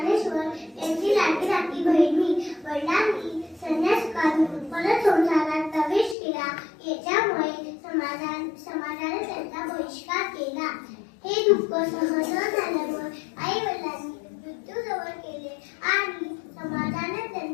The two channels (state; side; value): drops out; right; at 6.2 s